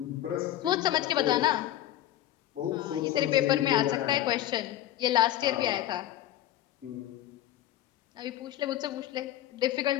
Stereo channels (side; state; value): right; quieter; 13.0 dB